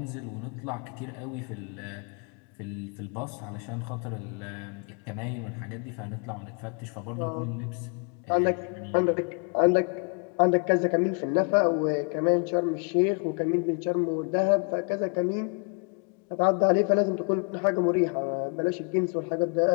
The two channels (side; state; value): right; quieter; 37.0 dB